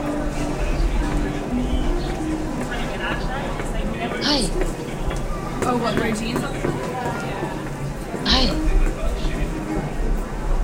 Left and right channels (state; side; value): identical; both; correlation 1.00